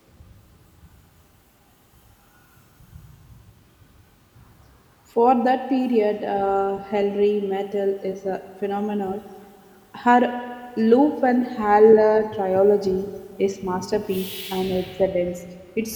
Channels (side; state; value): both; identical; correlation 1.00